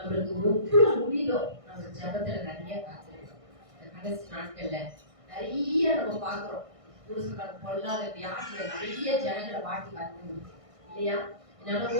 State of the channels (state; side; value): late; left; 1.6 ms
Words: எவ்வளவு முடியுதோ நம்ம ஜெபத்துல நிறைய காத்திருக்கோம். இந்த கடைசி நாட்கள்ல நிறைய நம்ம பாக்குறோம். புருஷனுக்கு பொல்லாத வியாதியில நிறைய ஜனங்களை வாட்டி வந்து இல்லையா?